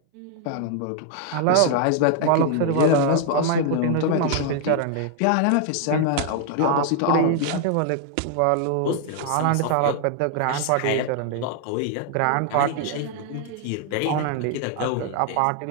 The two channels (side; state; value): both; different; correlation 0.00